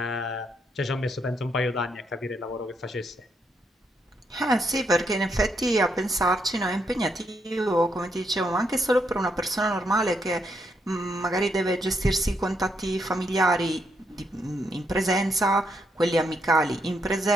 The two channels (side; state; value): both; normal; correlation 0.78